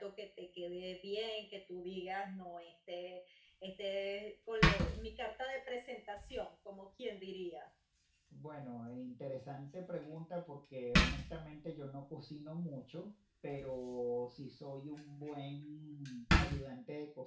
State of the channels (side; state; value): both; identical; correlation 1.00